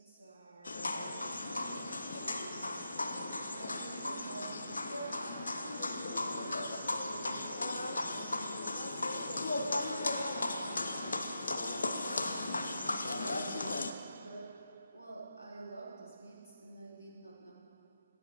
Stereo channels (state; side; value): inverted; both; correlation -0.85